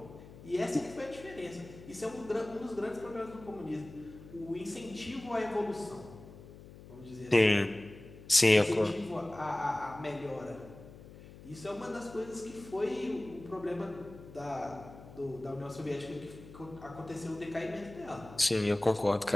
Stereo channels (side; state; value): left; noise; hum, 17 dB below the sound